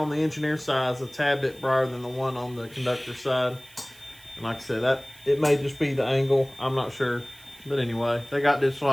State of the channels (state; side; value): noise; right; hiss, 24 dB below the sound